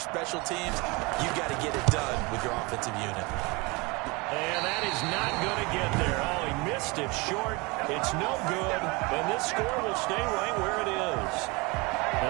special teams. You've got to get it done with your offensive unit. And that is not going to get there. Oh, he missed it short. It's no good. And this score will stay right where it is. And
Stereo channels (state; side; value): quieter; left; 26.4 dB